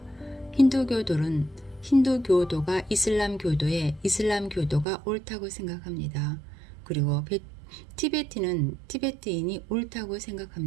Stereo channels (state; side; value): drops out; left; at 4.9 s